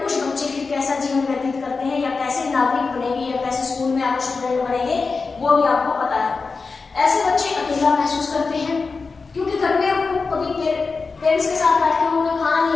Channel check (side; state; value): right; quieter; 4.4 dB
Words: बच्चे फिर कैसा जीवन व्यतीत करते हैं या कैसे नागरिक बनेंगे या कैसे स्कूल में आप स्टूडेंट बनेंगे, वो भी आपको पता है। ऐसे बच्चे अकेला महसूस करते हैं क्योंकि घर में उनको कभी पेरेंट्स के साथ बैठ के उन्होंने खाना